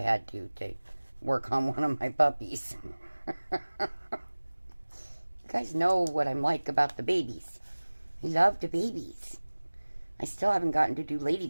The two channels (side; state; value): both; inverted; correlation -1.00